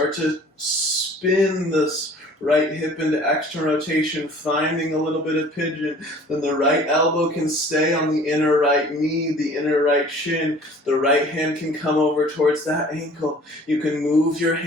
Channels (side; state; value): both; normal; correlation 0.49